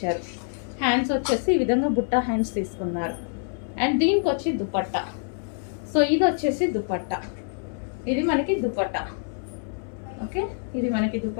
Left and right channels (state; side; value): silent; right; digital silence